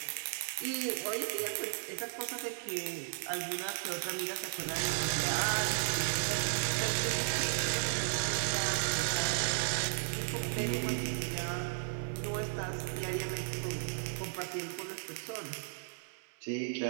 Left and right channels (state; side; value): silent; left; digital silence